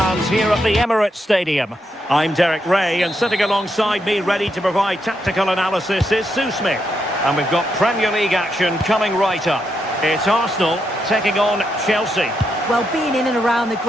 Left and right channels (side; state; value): both; normal; correlation 0.81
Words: here at the Emirates Stadium. I'm Derek Ray, and sitting alongside me ready to provide tactical analysis is Sue Smith. And we've got Premier League action coming right up. It's Arsenal taking on Chelsea. Well, being in and around the